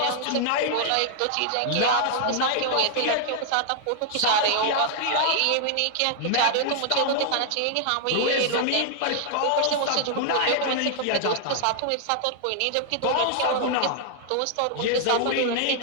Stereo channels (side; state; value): both; different; correlation 0.00